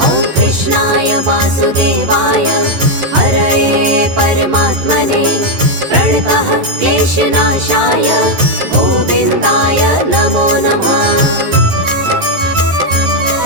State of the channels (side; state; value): left; late; 11 ms